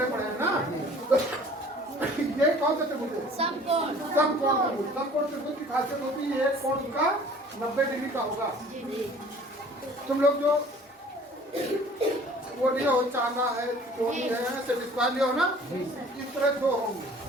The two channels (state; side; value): normal; both; correlation 0.50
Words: पढ़े हैं ना। ये कौन सा त्रिभुज है? समकोण त्रिभुज। समकोण त्रिभुज की खासियत होती है एक कोण उसका 90 डिग्री का होगा। तुम लोग जो वो लिए हो, चांदा है, कोणी है, स्क्वायर लिए हो ना, इस तरह दो होंगे,